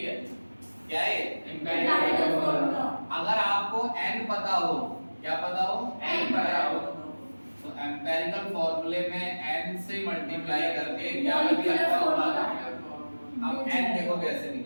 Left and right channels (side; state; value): both; inverted; correlation -1.00